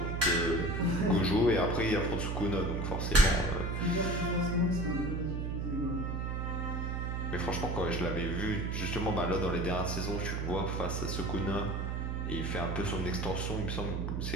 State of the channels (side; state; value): right; noise; hum, 1 dB below the sound